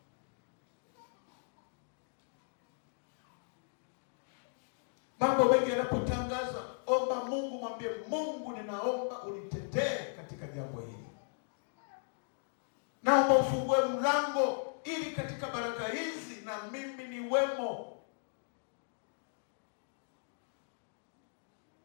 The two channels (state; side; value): silent; right; digital silence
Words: Mambo mengi yanapotangazwa, omba Mungu, mwambie Mungu, ninaomba unitetee katika jambo hili. Naomba ufungue mlango ili katika baraka hizi na mimi niwemo.